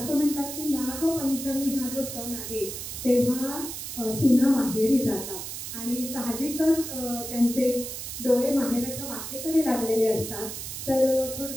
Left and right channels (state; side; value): noise; right; hiss, 7 dB below the sound